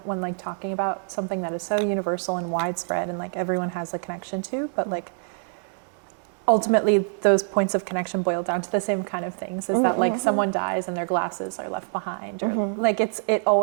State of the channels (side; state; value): left; silent; digital silence